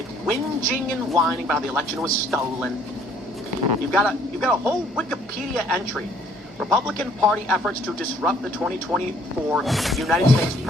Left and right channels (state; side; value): normal; both; correlation 0.61